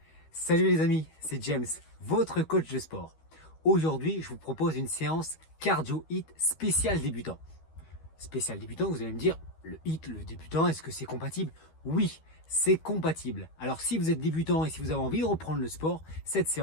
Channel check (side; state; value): right; late; 13 ms